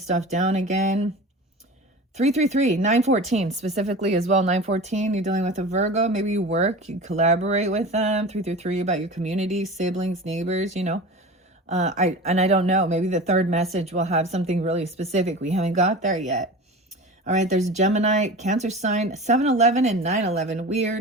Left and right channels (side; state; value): both; normal; correlation 0.34